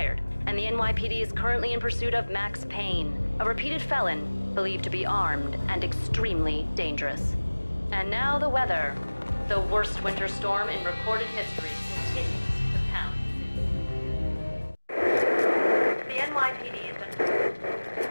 and the NYPD is currently in pursuit of Max Payne, a repeated felon believed to be armed and extremely dangerous. And now the weather. The worst winter storm in recorded history continues to pound. The NYPD has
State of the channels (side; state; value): both; inverted; correlation -1.00